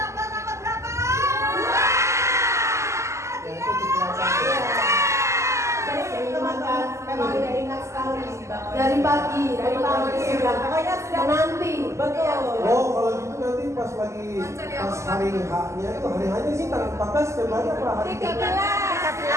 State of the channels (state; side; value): late; left; 0.14 ms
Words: Memang udah ingat sekali Dari pagi sudah menanti. Betul. Oh kalau gitu nanti pas hari H-nya itu hari H-nya sih tanggal 14 Februari apa hari 13